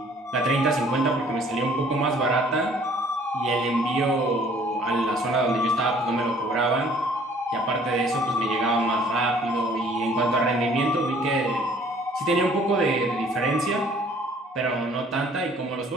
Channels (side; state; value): both; normal; correlation 0.56